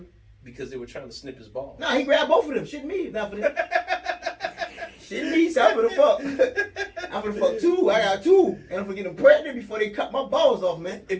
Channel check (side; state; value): both; identical; correlation 1.00